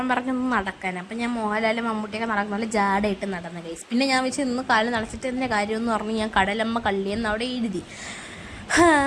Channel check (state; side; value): identical; both; correlation 1.00